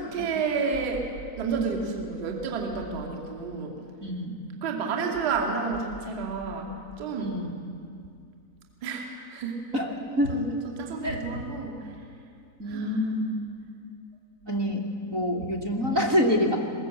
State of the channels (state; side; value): late; left; 3.9 ms